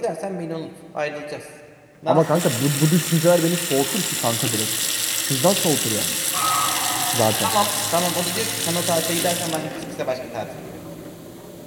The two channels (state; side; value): identical; both; correlation 1.00